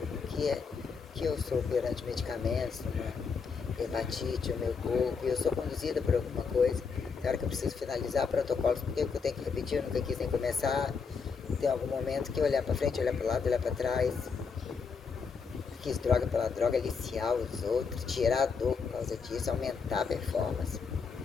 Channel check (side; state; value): right; quieter; 5.5 dB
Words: que eu sou perante medicamentos, uma hepatite, o meu corpo, e eu sou conduzida por alguma coisa. Tem hora que eu preciso finalizar protocolos, porque eu tenho que repetir, eu nunca quis nem começar. Tem algum momento que olhar pra frente, olhar pro lado, olhar pra trás. Quis droga pela droga, aliciar os outros, tirar a dor por causa disso, aumentar a performance.